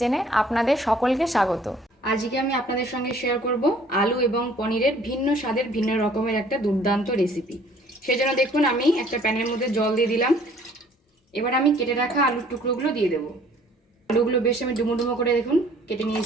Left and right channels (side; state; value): both; normal; correlation 0.57